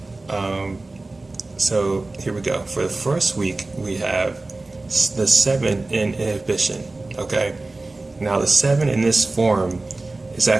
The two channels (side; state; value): left; quieter; 3.2 dB